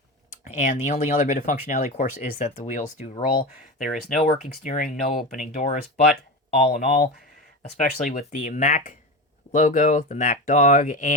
And the only other bit of functionality, of course, is that the wheels do roll. There is no working steering, no opening doors, but all in all, especially with the Mack logo, the Mack dog,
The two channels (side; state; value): both; normal; correlation 0.23